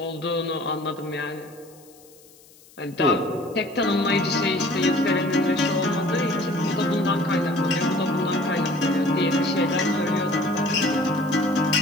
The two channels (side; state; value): left; noise; hiss, 26 dB below the sound